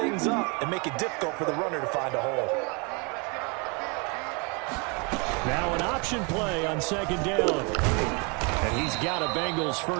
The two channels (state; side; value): quieter; left; 32.4 dB